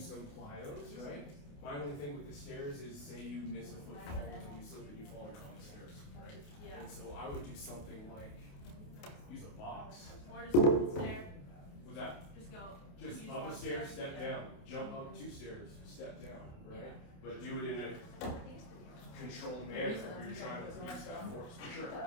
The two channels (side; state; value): right; late; 28 ms